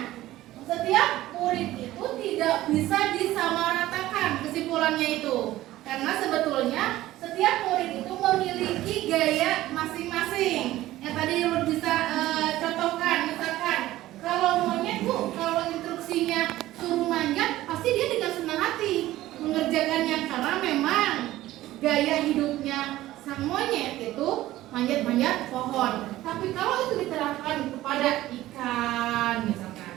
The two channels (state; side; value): quieter; left; 15.6 dB